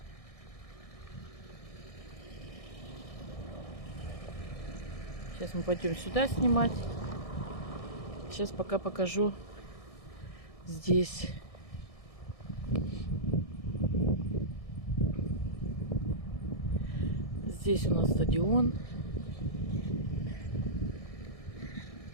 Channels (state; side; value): late; right; 1.6 ms